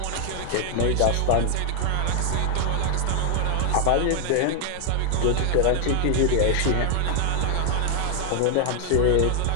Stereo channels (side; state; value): both; different; correlation 0.00